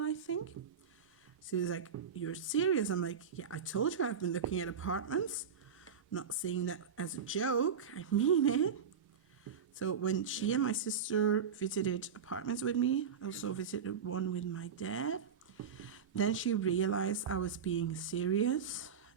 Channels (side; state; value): left; quieter; 6.7 dB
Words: I think. She was like, you're serious? I'm like, yeah, I told you I've been looking at apartments. I'm not saying that as a joke. I mean it. So when she and my sister visited apartments with me, I also visited one with my dad. Then she realized I was being serious.